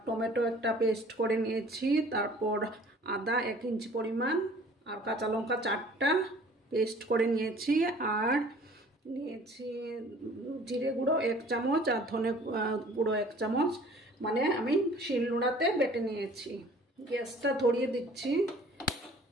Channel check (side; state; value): both; normal; correlation 0.51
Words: টমেটো একটা পেস্ট করে নিয়েছি, তারপর আদা 1 ইঞ্চি পরিমাণ, আর কাঁচা লঙ্কা 4টা পেস্ট করে নিয়েছি, আর নিয়েছি জিরে গুঁড়ো 1 চামচ আর ধনে গুঁড়ো 1 চামচ, মানে আমি শিলনোড়াতে বেটে নিয়েছি। গ্যাসটা ধরিয়ে দিচ্ছি।